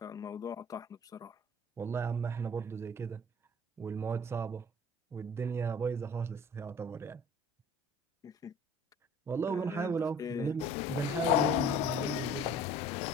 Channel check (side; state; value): both; normal; correlation 0.47